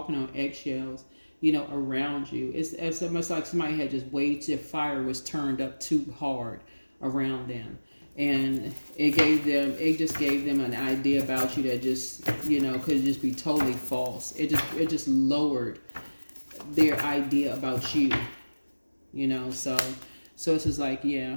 on eggshells, around you. It's almost like somebody had just waited till fire was turned up too hard around them. And it just gave them an idea about you that just, could just be totally false. It just lowered their idea about you, so it's just like,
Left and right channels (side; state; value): both; inverted; correlation -1.00